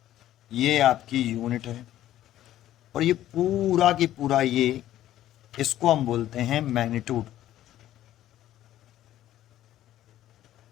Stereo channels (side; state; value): right; quieter; 13.0 dB